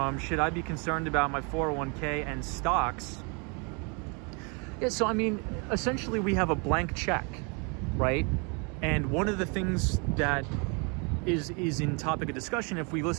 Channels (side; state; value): left; quieter; 33.4 dB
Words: Should I be concerned about my 401k and stocks? Yeah, so I mean, essentially we have a blank check, right? And one of the things that is in topic of discussion, if we